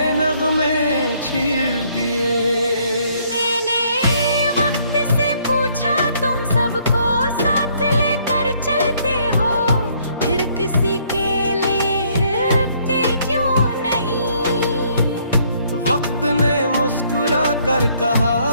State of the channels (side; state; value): both; inverted; correlation -0.66